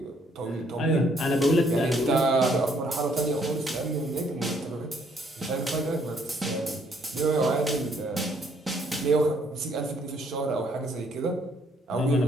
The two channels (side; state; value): both; normal; correlation 0.67